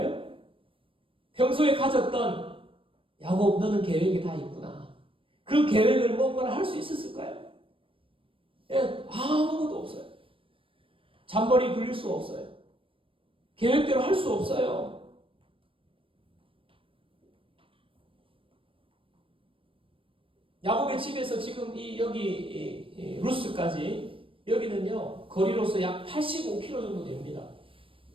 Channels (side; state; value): left; late; 0.26 ms